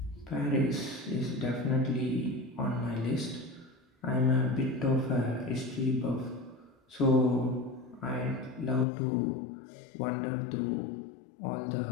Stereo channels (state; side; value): drops out; right; at 8.8 s